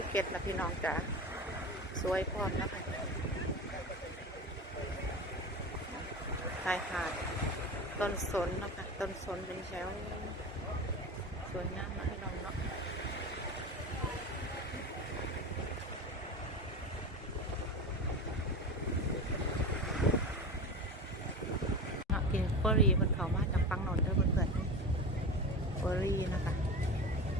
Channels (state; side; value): normal; both; correlation 0.27